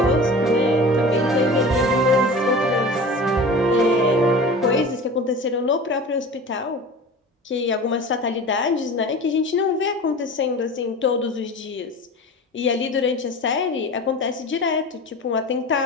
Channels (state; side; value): normal; both; correlation 0.36